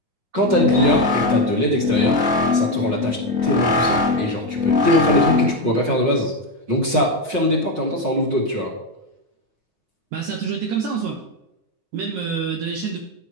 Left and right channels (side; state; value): left; late; 9.6 ms